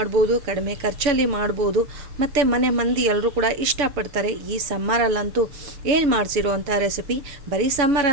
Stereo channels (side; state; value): left; late; 7.0 ms